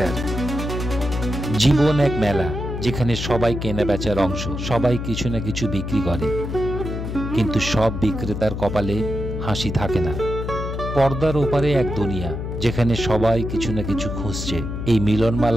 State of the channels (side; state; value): left; noise; hum, 5 dB below the sound